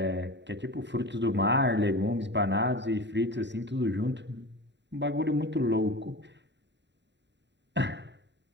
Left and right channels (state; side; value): late; left; 0.52 ms